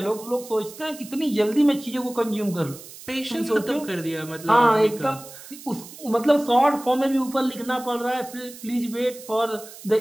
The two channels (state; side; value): noise; right; hiss, 16 dB below the sound